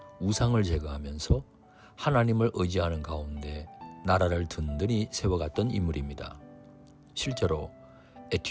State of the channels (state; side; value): identical; both; correlation 1.00